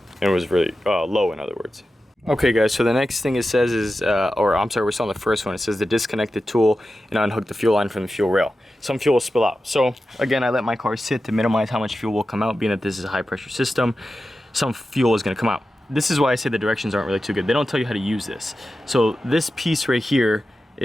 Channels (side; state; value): both; normal; correlation 0.92